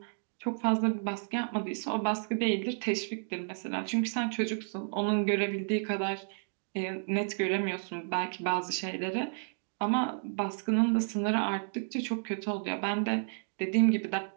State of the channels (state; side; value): silent; left; digital silence